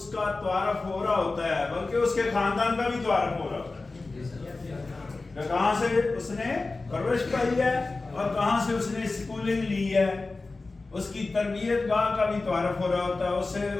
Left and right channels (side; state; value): right; quieter; 3.5 dB